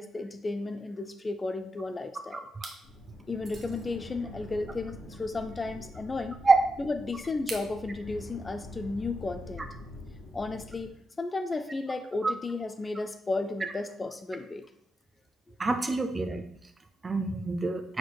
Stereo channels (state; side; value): normal; both; correlation 0.86